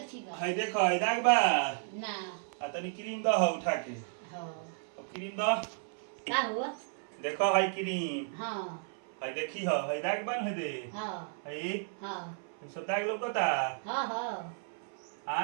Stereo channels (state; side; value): silent; left; 55 dB below the other